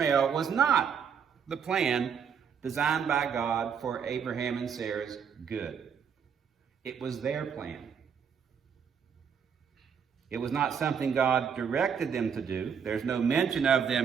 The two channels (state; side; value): quieter; left; 7.1 dB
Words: was not the plan designed by God for Abraham and Sarah's good. It was their plan. It was not something God directed them to do. There's no mention of